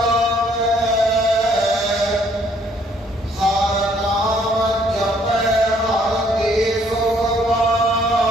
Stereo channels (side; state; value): both; normal; correlation 0.64